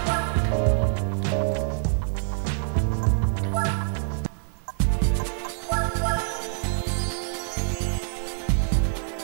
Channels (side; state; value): left; silent; digital silence